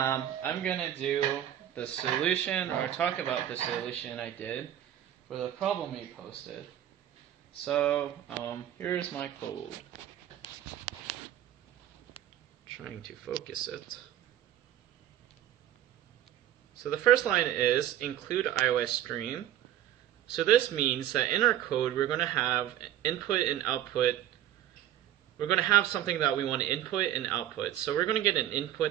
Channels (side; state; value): left; quieter; 11.9 dB